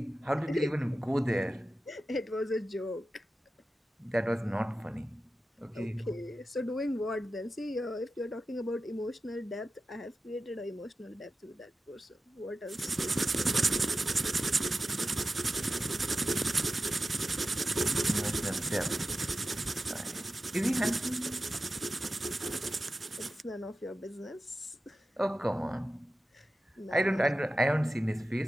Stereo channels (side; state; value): both; normal; correlation 0.93